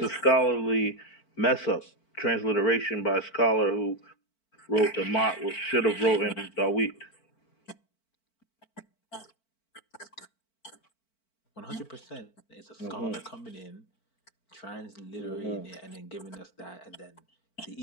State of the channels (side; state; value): right; late; 4.5 ms